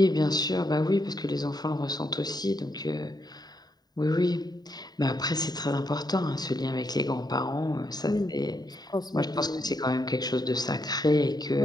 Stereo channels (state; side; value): late; right; 0.20 ms